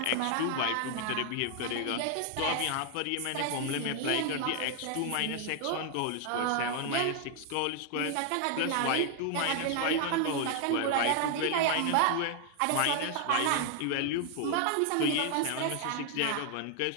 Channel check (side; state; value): both; different; correlation 0.00